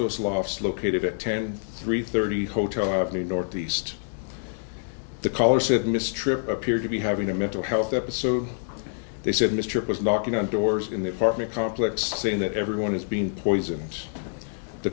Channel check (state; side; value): silent; right; digital silence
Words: Lofts located at 10-330 Hotel Avenue Northeast. The caller said Miss Tripp appeared to be having a mental health episode. They said Miss Tripp was knocking on doors in the apartment complex saying that everyone is being poisoned. The